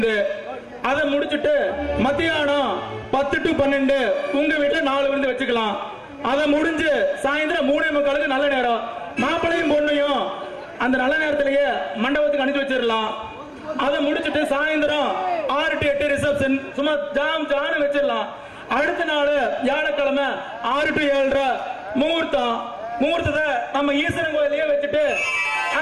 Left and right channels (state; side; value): identical; both; correlation 1.00